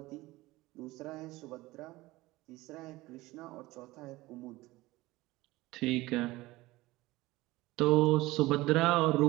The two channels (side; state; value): left; quieter; 19.3 dB